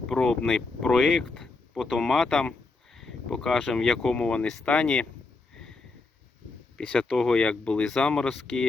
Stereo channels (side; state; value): right; quieter; 3.7 dB